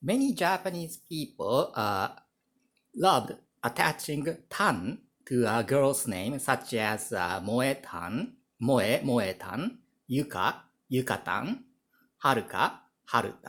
many Japanese people loved attaching tan to a girl's name such as Moe-tan, Moe-tan, Yuka, Yukatan, Haruka,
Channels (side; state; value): both; identical; correlation 1.00